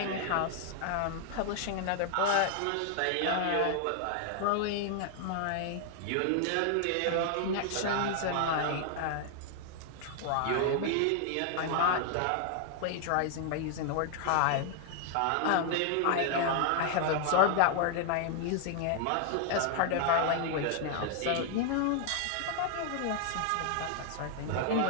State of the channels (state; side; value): different; both; correlation 0.00